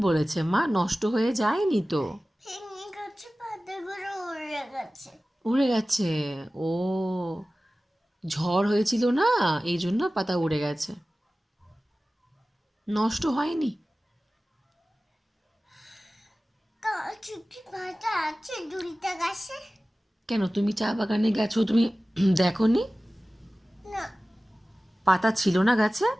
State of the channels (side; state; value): both; normal; correlation 0.97